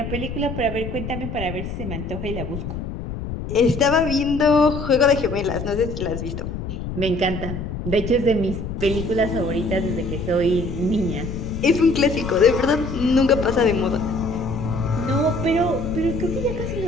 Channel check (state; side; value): noise; left; rumble, 6 dB below the sound